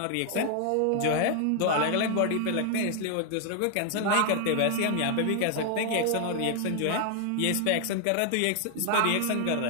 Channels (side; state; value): both; different; correlation 0.00